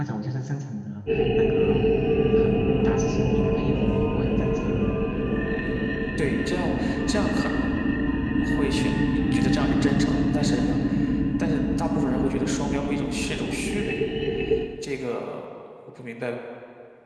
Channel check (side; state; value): both; identical; correlation 1.00